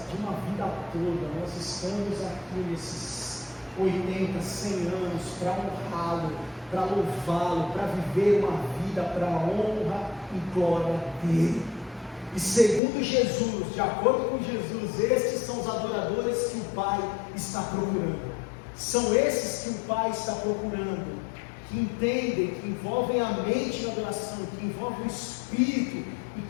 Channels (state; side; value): drops out; right; at 12.8 s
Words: de uma vida toda. Nós estamos aqui nesses 80, 100 anos para honrá-lo, para louvá-lo, para viver uma vida para a honra e glória dele. E segundo Jesus, de acordo com Jesus, estes são os adoradores que o Pai está procurando. São esses que o Pai está procurando, que entendem, que envolvem a mente na adoração, que envolvem o espírito e